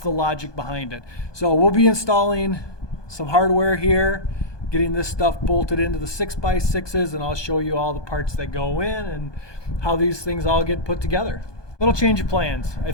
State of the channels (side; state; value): right; late; 1.2 ms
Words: logic behind it. So we'll be installing some hardware here. getting this stuff bolted into the 6x6s, and I'll show you all the parts that go in and how these things all get put together. Little change of plans. I